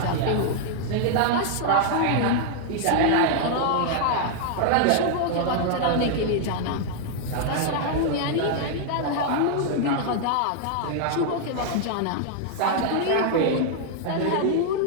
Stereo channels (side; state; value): both; different; correlation -0.01